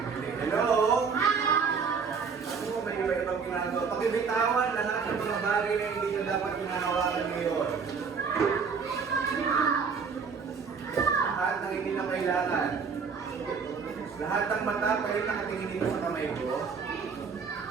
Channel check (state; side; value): quieter; left; 5.6 dB